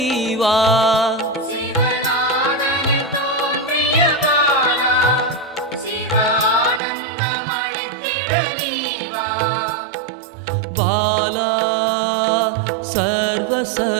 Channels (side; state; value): left; drops out; at 6.8 s